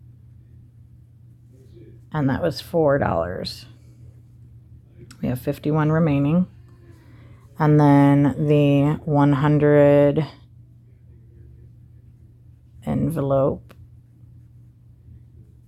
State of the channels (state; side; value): identical; both; correlation 1.00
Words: And that was $4. We have 51 remaining. And then the 100 envelope